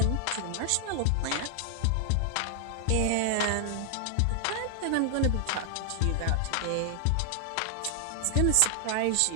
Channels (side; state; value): both; different; correlation 0.00